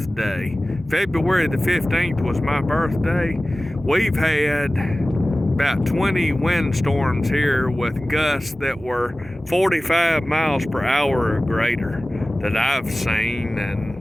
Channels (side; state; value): both; normal; correlation 0.97